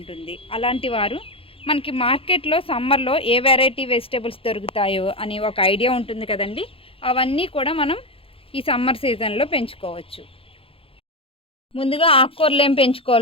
అలాంటి వారు మనకి మార్కెట్లో సమ్మర్లో ఏ వెరైటీ వెజిటేబుల్స్ దొరుకుతాయో అని ఒక ఐడియా ఉంటుంది కదండి. అవన్నీ కూడా మనం ఈ సమ్మర్ సీజన్లో పెంచుకోవచ్చు. ముందుగా ఆకుకూరలు ఏం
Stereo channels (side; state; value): right; late; 0.27 ms